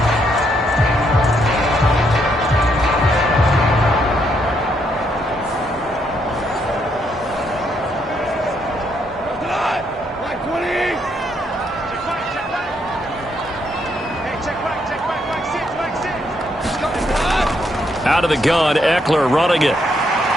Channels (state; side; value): normal; both; correlation 0.75